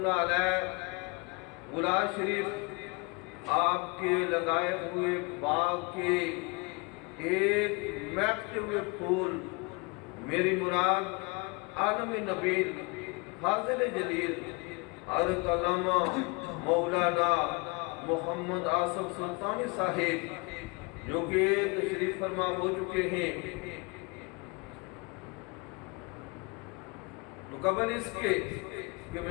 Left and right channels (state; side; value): quieter; right; 28.5 dB